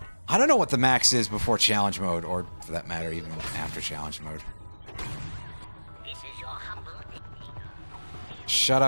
I don't know what the max is before challenge mode, or for that matter, even after challenge mode. Shut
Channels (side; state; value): both; inverted; correlation -1.00